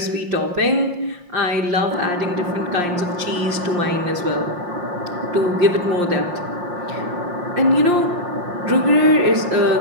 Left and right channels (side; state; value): left; late; 5.7 ms